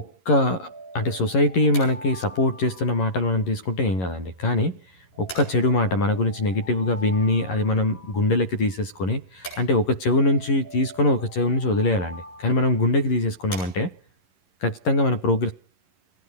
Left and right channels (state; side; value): late; right; 11 ms